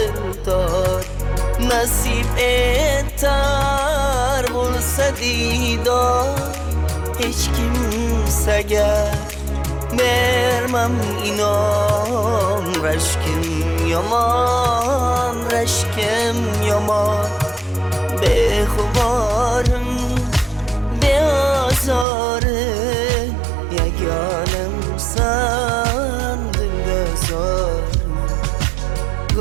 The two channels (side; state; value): left; drops out; at 22.1 s